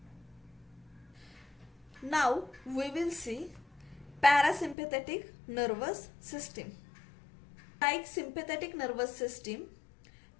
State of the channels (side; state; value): right; drops out; at 4.8 s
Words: Now we will see parasympathetic nervous system. Like sympathetic nervous system,